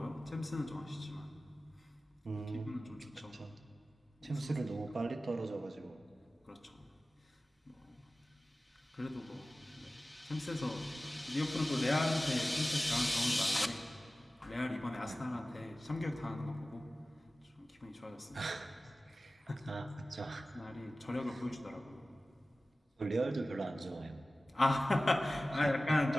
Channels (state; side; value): normal; both; correlation 0.96